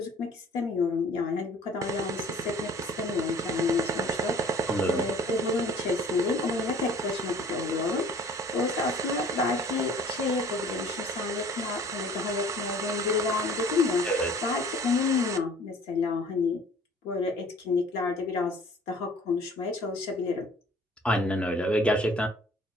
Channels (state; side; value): normal; both; correlation 0.51